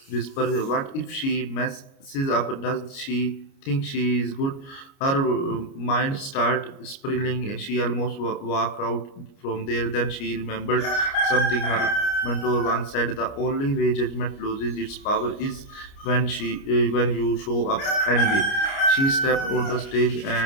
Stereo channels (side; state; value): right; late; 29 ms